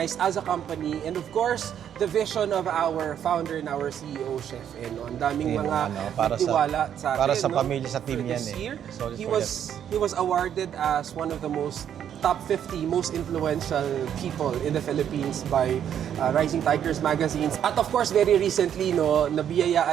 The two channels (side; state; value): left; quieter; 9.4 dB